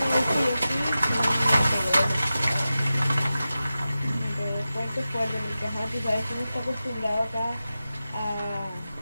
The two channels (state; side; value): inverted; both; correlation -0.94